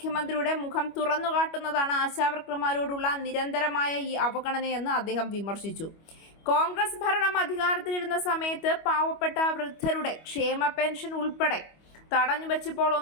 മുഖം തുറന്നുകാട്ടുന്നതാണ് ആശാവർക്കർമാരോടുള്ള നിരന്തരമായ ഈ അവഗണനയെന്ന് അദ്ദേഹം വിമർശിച്ചു. കോൺഗ്രസ് ഭരണം അധികാരത്തിലിരുന്ന സമയത്ത് പാവപ്പെട്ട വൃദ്ധരുടെ ക്ഷേമ പെൻഷൻ ഉൾപ്പെടെ തടഞ്ഞു വെച്ചപ്പോൾ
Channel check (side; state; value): right; late; 25 ms